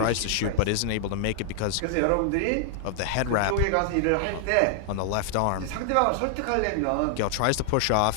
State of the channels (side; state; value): both; different; correlation 0.00